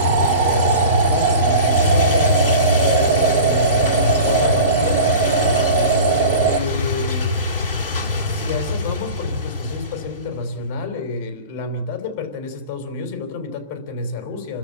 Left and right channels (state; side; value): inverted; both; correlation -0.36